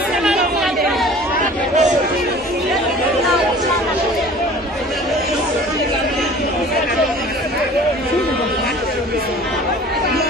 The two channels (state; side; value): normal; both; correlation 0.46